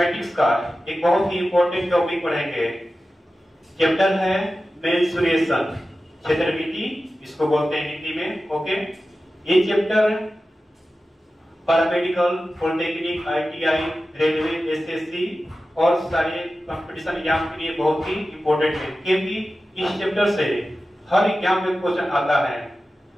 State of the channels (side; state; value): both; normal; correlation 0.94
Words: का एक बहुत ही इंपॉर्टेंट टॉपिक पढ़ेंगे। चैप्टर है मेंसुरेशन, क्षेत्रमिति इसको बोलते हैं हिंदी में। ओके, ये chapter paramedical, polytechnic, ITI, railway, SSC और सारे कंपटीशन एग्जाम के लिए बहुत ही इंपॉर्टेंट है, क्योंकि इस चैप्टर से हर एग्जाम में क्वेश्चन आता है।